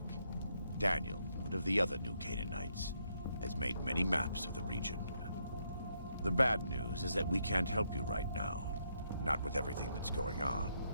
Daniel, one of the other New Canaanites, has made many maps of the region. The bad news is that we can't help you right now. Not with everything that's going on.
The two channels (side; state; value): both; inverted; correlation -0.76